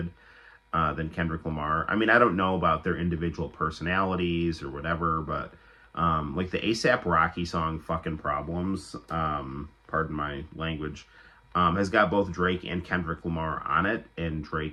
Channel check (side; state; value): both; identical; correlation 1.00